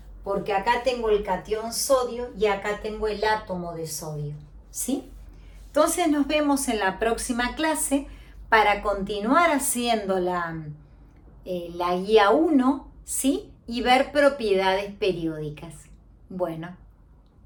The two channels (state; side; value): identical; both; correlation 1.00